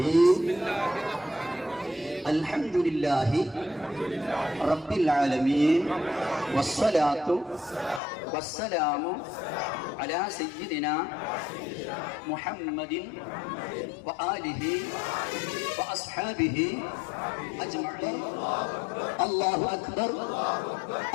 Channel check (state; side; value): drops out; right; at 8.0 s